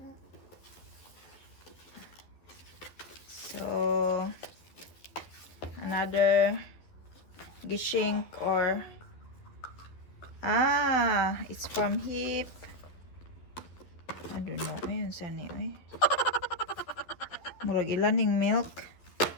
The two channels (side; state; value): right; late; 11 ms